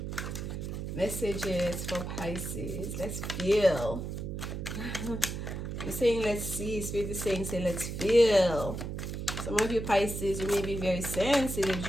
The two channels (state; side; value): noise; right; hum, 5 dB below the sound